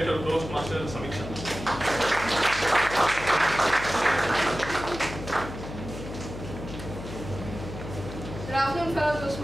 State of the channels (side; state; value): left; noise; hum, 10 dB below the sound